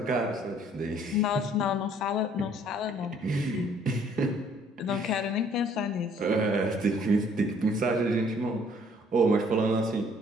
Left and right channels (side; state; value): both; normal; correlation 0.60